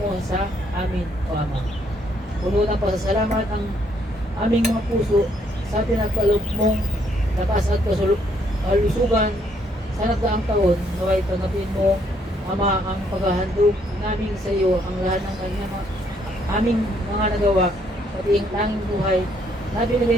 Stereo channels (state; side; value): normal; both; correlation 0.69